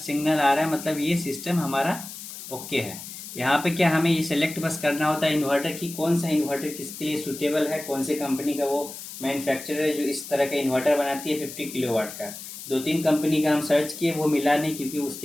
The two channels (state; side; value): noise; left; hiss, 11 dB below the sound